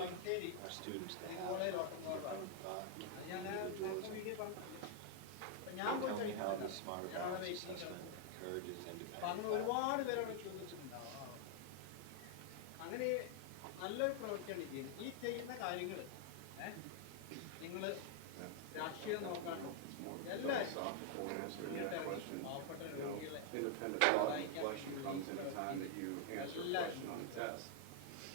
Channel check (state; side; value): different; both; correlation 0.00